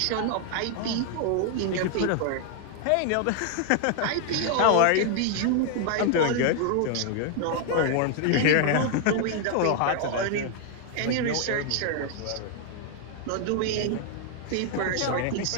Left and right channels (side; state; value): both; different; correlation 0.00